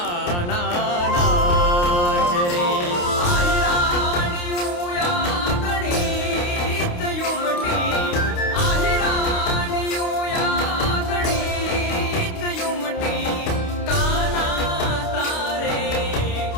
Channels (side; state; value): right; late; 28 ms